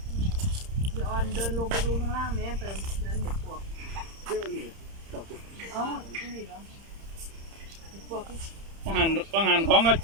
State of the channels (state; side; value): late; left; 30 ms